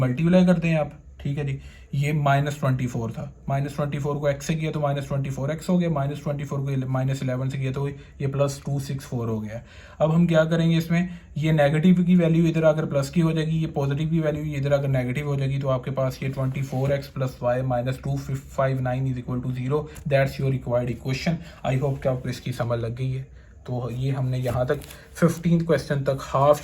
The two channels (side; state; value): both; identical; correlation 1.00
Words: करते हैं आप, ठीक है जी। ये -24 था, -24 को x से किया तो -24x हो गया, -24 को -11 से किया तो ये +264 हो गया। अब हम क्या करेंगे इसमें, ये नेगेटिव की वैल्यू इधर आकर प्लस की हो जाएगी, ये पॉजिटिव की वैल्यू इधर आकर नेगेटिव हो जाएगी। तो आपके पास ये 24x + y - 259 is equal to 0। That's your required equation. I hope कि आपको इसकी समझ लग गई है। तो ये हमने यहाँ तक 15 क्वेश्चन तक हाफ